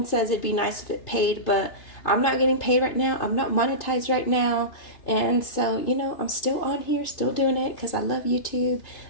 says it'd be nice if it paid, but I'm not getting paid right now. I'm not monetized right now. And so, I'm still on here, still doing it because I love YouTube.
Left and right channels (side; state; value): right; late; 2.6 ms